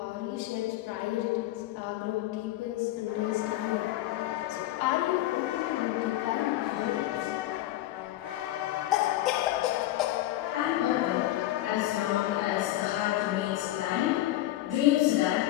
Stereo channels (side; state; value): right; quieter; 15.1 dB